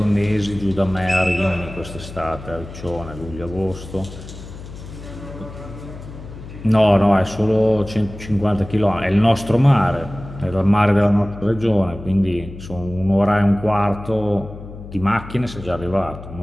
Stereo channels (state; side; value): noise; left; hum, 14 dB below the sound